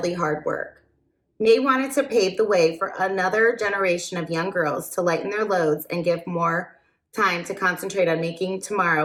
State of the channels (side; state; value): both; identical; correlation 1.00